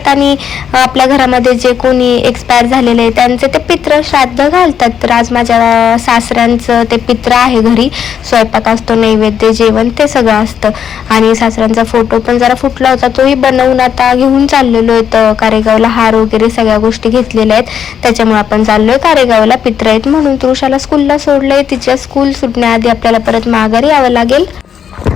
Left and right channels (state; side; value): quieter; right; 8.3 dB